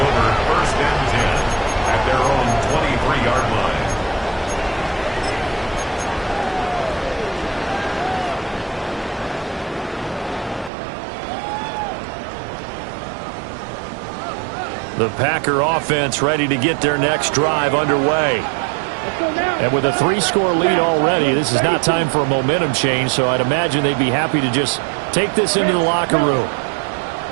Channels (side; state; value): left; drops out; at 10.7 s